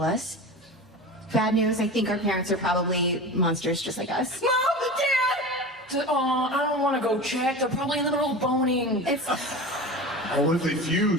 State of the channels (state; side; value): normal; both; correlation 0.31